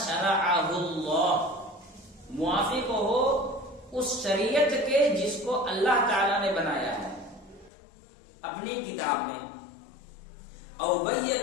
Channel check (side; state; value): right; drops out; at 7.7 s